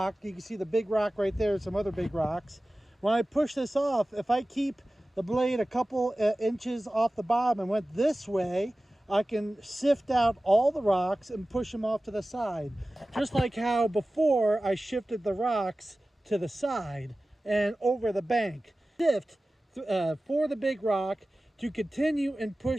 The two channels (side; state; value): both; normal; correlation 0.96